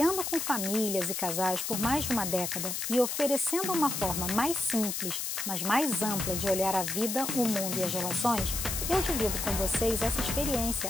com famílias e casais por mais de uma década e oferecendo uma forma mais simples, mas mais ampla de olhar a vida, o mundo e as relações, eu divido com vocês essa experiência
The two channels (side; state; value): left; noise; hiss, 2 dB below the sound